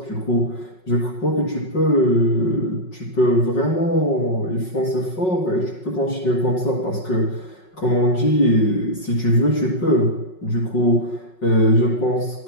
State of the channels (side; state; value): right; late; 5.4 ms